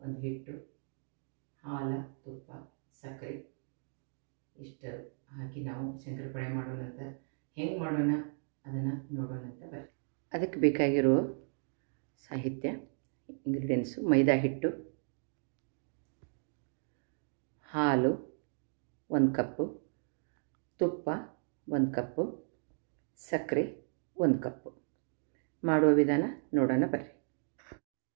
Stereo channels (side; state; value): left; silent; digital silence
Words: ಒಂದು ಹಿಟ್ಟು, ಹಾಲು, ತುಪ್ಪ, ಸಕ್ಕರೆ ಇಷ್ಟು ಹಾಕಿ ನಾವು ಶಂಕರಪಾಳೆ ಮಾಡೋಣಂತ. ಹೆಂಗೆ ಮಾಡೋಣ ಅದನ್ನು ನೋಡೋಣಂತ ಬರ್ರಿ. ಅದಕ್ಕೆ ಬೇಕಾಗಿರೋ ಸಾಹಿತ್ಯ ಇಂಗ್ರೀಡಿಯೆಂಟ್ಸು: ಮೈದಾ ಹಿಟ್ಟು, ಹಾಲು 1 ಕಪ್ಪು, ತುಪ್ಪ 1 ಕಪ್ಪು, ಸಕ್ಕರೆ 1 ಕಪ್ಪು. ಮಾಡುವ ವಿಧಾನ ನೋಡೋಣ ಬರ್ರಿ.